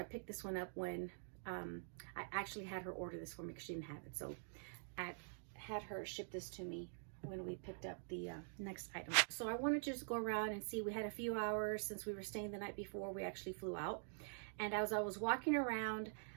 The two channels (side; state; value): left; silent; digital silence